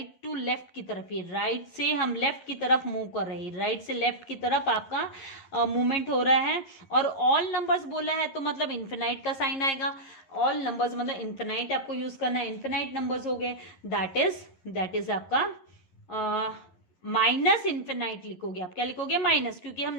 टू लेफ्ट की तरफ, ये राइट से हम लेफ्ट की तरफ मूव कर रहे हैं, राइट से लेफ्ट की तरफ आपका मूवमेंट हो रहा है। और ऑल नंबर्स बोला है तो मतलब इन्फिनाइट का साइन आएगा। ऑल नंबर्स मतलब इन्फिनाइट आपको यूज करना है, इन्फिनाइट नंबर्स हो गए, दैट इज आपका माइनस इन्फिनाइट लिखोगे आप। क्या लिखोगे? माइनस, क्योंकि हम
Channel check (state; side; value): late; right; 11 ms